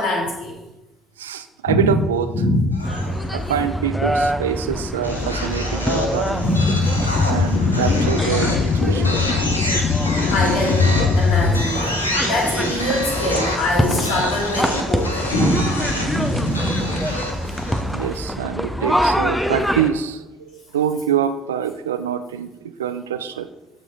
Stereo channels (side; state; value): both; normal; correlation 0.48